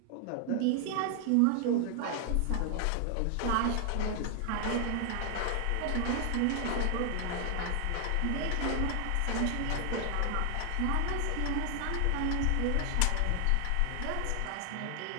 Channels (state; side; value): different; both; correlation 0.00